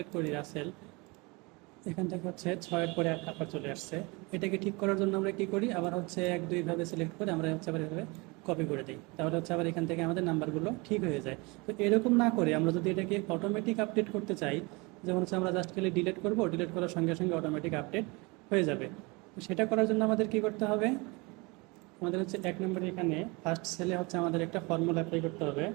করি রাসেল, এখান থেকে 6-এর পরে 1 নাম্বার চলে আসছে। এটাকে ঠিক করার জন্য আমরা কি করি, আবার 1-2 ভাবে সিলেক্ট করে আমরা আবার এভাবে কপি করে দিই, তাহলে আবার এখান থেকে আমাদের নাম্বারগুলো ঠিক হয়ে যায়। তো এরকম না করে আমরা যদি এটাকে অটোমেটিক আপডেট করতে চাই, যেমন আমরা জাস্ট খালি ডিলিট করব, ডিলিট করার সঙ্গে সঙ্গে অটোমেটিক আপডেট হয়ে যাবে। তো সেটা করার জন্য আমাদের কি করতে হবে, আমাদের 1 নম্বরে এখানে ফার্স্ট সেলে আমাদের একটা ফর্মুলা অ্যাপ্লাই করতে হবে।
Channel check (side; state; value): left; quieter; 26.9 dB